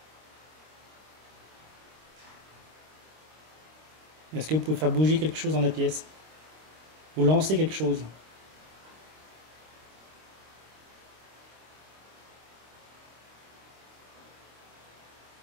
Est-ce que vous pouvez faire bouger quelque chose dans la pièce? Ou lancer quelque chose?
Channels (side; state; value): left; late; 26 ms